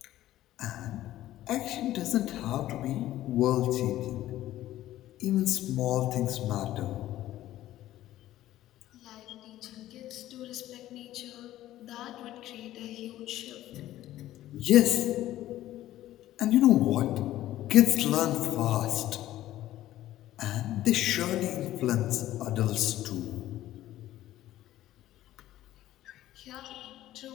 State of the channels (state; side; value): quieter; right; 14.1 dB